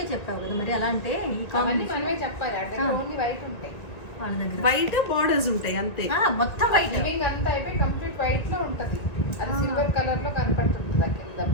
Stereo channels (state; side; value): late; right; 1.9 ms